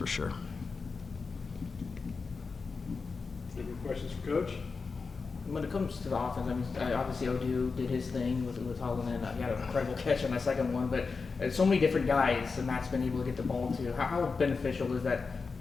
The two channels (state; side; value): quieter; right; 4.6 dB